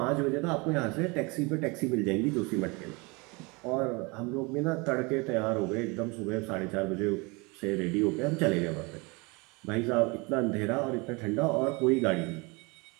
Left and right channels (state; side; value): quieter; left; 27.6 dB